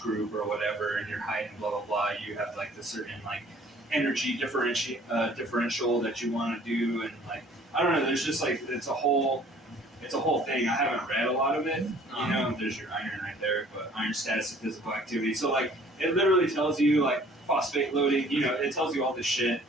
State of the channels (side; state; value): both; normal; correlation 0.54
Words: group or whatever, and your height and blah, blah, blah, you have like the certain like energy differential that you want to do. And like, I don't know, there's just like, it's a whole thing. I haven't read a lot of it. There's your iron right there, but iron status of physical activity. So like, it literally tells you like phosphate loading, it tells you all this shit,